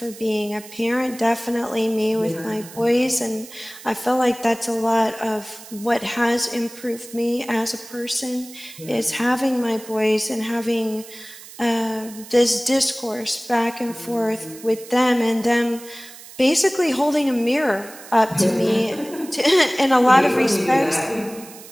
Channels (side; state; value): right; noise; hiss, 17 dB below the sound